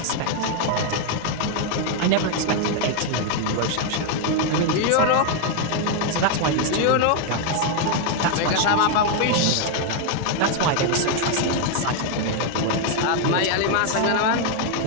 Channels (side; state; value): both; different; correlation 0.01